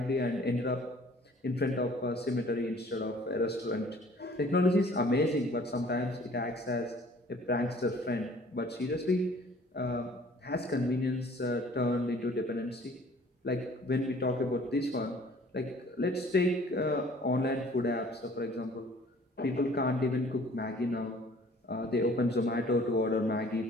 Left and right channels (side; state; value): both; normal; correlation 0.53